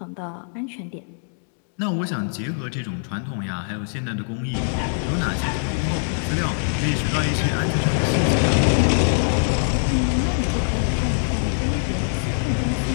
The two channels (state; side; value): silent; right; digital silence